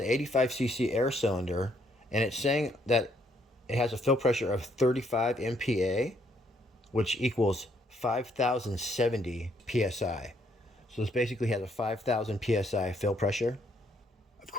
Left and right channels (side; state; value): both; normal; correlation 0.70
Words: 85cc air cylinder, and it's saying that it has a fill pressure of 35 MPa, which equals 5,070 psi. So this basically has a 5,000 psi fill pressure. Of